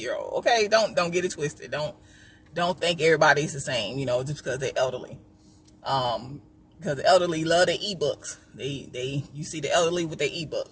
Okay, don't get it twisted. Don't think everybody's the same, you know, just because they're elderly. Because the elderly love their ebooks. You see the elderly with their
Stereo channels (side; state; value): both; identical; correlation 1.00